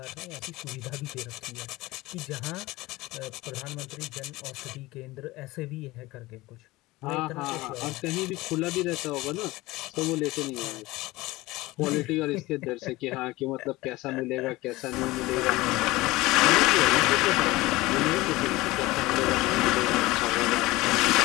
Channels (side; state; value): right; quieter; 19.9 dB